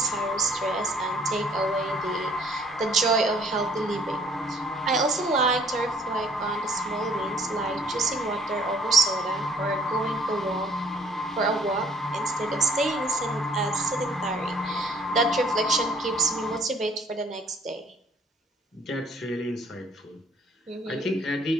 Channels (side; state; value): both; normal; correlation 0.58